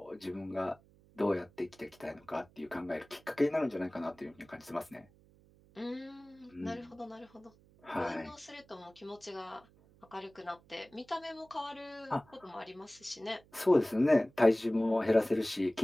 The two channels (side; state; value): right; noise; hum, 28 dB below the sound